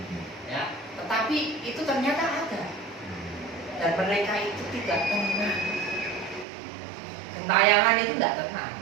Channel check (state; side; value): drops out; left; at 6.5 s